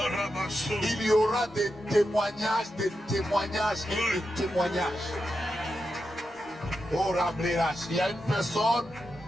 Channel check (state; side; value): normal; both; correlation 0.88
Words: il y aura des témoignages et des témoignages. Oh, il y a une personne,